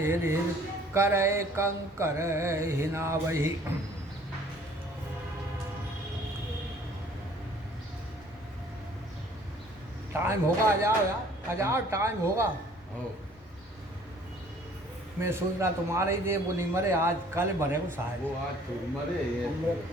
हिर, करे कंकर हिनावही। टाइम होगा, आ जाओ यार, आ जाओ, टाइम होगा। मैं सोच रहा तुम्हारे ही दे वो नहीं मरे, आज कल मरे को शायद। वो आज तो मरे, ये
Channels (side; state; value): both; normal; correlation 0.55